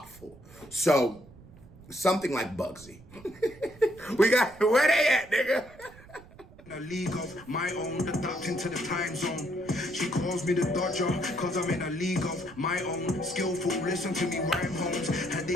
So, something like Bugzy. We got, where they at, nigga? In a league of my own, adapting to the time zone. She calls me the Dodger, cause I'm in a league of my own. Skillful, listen to me, rhyme homes. Are they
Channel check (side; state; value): right; noise; rumble, 21 dB below the sound